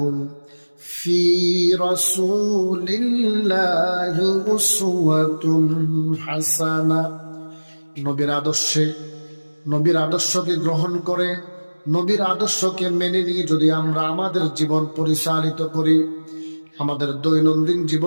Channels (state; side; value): inverted; both; correlation -1.00